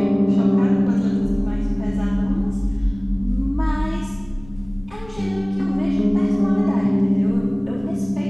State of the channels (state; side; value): noise; left; rumble, 20 dB below the sound